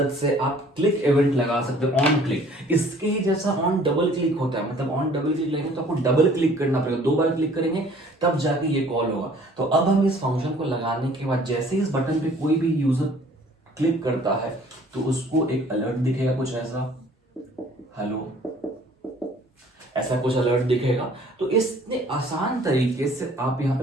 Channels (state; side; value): normal; both; correlation 0.54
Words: से आप क्लिक इवेंट लगा सकते हो, ऑन क्लिक। इसके ही जैसा ऑन डबल क्लिक होता है, मतलब ऑन डबल क्लिक लगेगा तो आपको डबल क्लिक करना पड़ेगा, 2 बार क्लिक करेंगे तब जाके ये कॉल होगा। तो अब हम इस फंक्शन को लगाने के बाद जैसे इस बटन पे कोई भी यूजर क्लिक करता है तो उसको एक अलर्ट दिखेगा, कुछ ऐसा, हेलो, ऐसा कुछ अलर्ट दिखेगा। तो इतने आसान तरीके से आप यहाँ पे